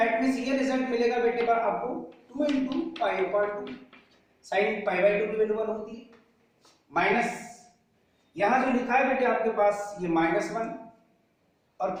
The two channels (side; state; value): both; identical; correlation 1.00